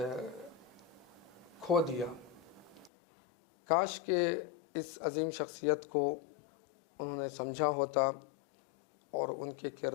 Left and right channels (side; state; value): right; drops out; at 2.9 s